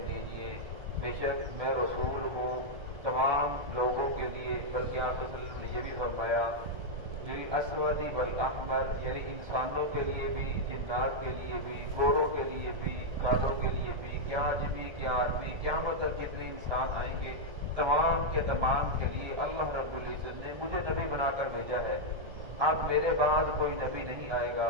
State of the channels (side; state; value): left; late; 1.3 ms